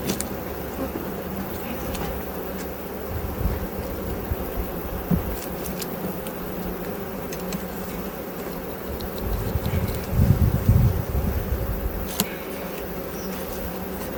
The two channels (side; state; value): both; identical; correlation 1.00